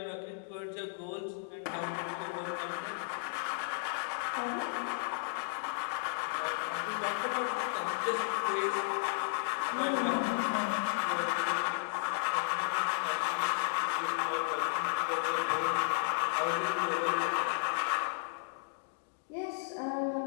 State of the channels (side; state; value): right; silent; digital silence